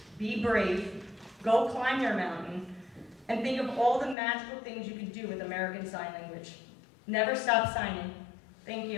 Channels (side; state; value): right; drops out; at 4.2 s